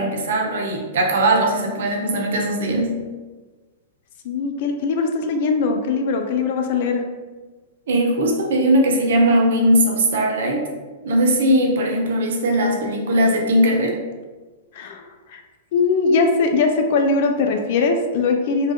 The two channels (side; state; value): both; inverted; correlation -0.41